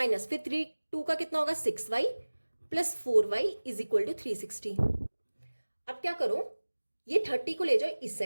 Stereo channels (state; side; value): inverted; both; correlation -1.00